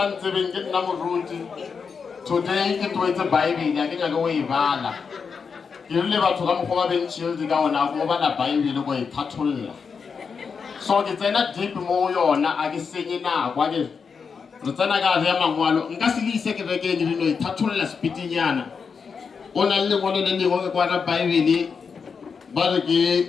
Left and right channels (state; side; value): quieter; right; 5.7 dB